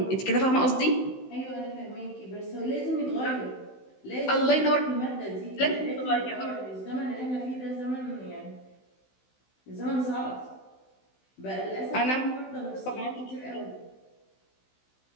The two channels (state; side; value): late; right; 16 ms